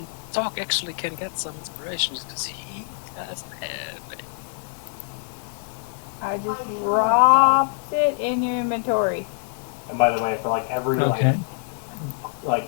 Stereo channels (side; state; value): right; silent; 62 dB below the other